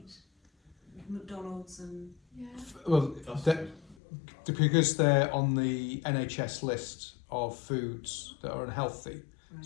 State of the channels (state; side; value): drops out; right; at 4.0 s